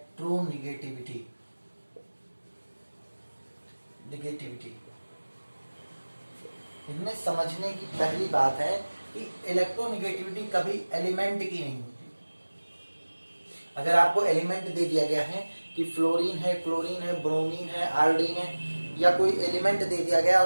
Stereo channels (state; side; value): inverted; both; correlation -1.00